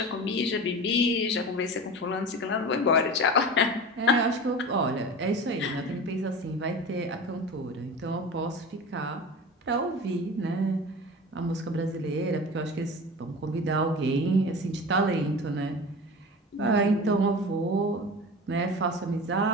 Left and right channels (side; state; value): both; normal; correlation 0.33